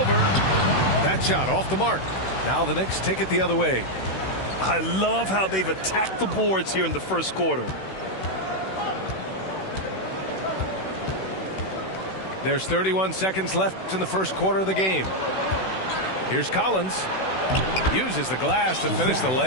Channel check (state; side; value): late; right; 16 ms